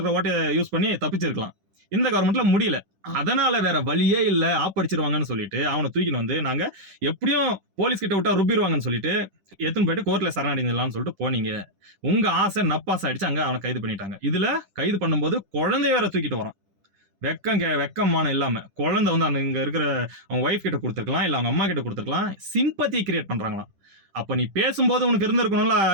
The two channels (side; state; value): left; late; 10 ms